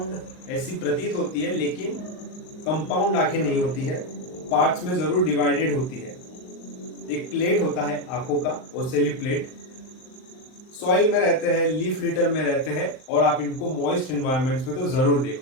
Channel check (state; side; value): late; right; 38 ms